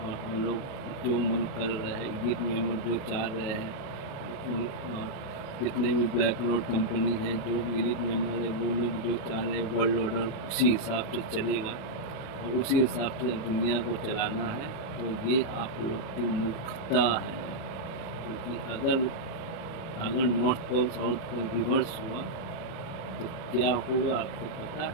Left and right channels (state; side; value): late; right; 37 ms